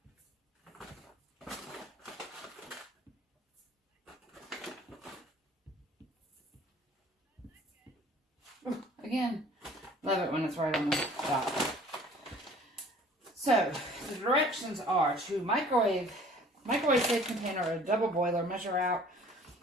Again, love it when it's right on the dot. So, the directions are to microwave safe container or a double boiler. Measure out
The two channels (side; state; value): both; normal; correlation 0.51